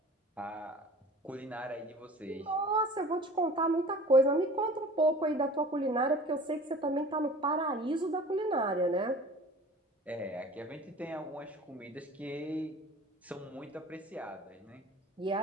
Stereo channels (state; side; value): normal; both; correlation 0.43